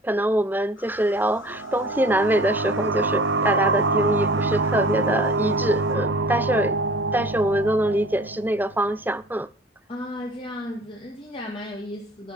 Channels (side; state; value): both; normal; correlation 0.46